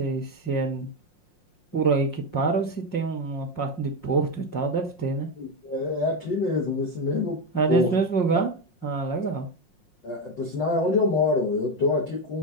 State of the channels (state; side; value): late; right; 5.6 ms